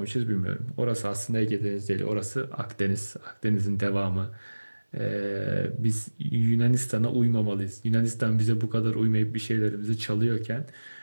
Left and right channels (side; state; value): both; inverted; correlation -1.00